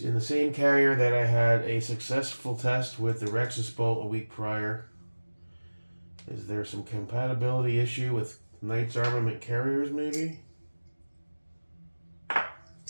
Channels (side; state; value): both; inverted; correlation -1.00